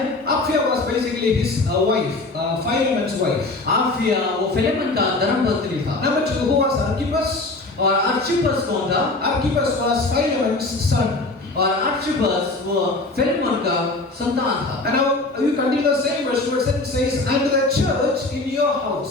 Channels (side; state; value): right; quieter; 3.1 dB